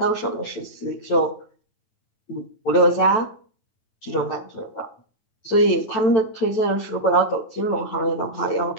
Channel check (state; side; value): late; right; 9.0 ms